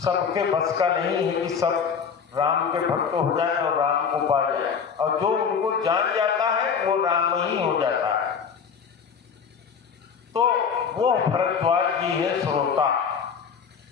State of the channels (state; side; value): quieter; right; 6.5 dB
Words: बस का नहीं है कि सब राम के भक्त हो जाए और राम को पा जाए, और जो उनको जान जाता है वो राम ही हो जाता है। तो वो भरद्वाज जी है श्रोता।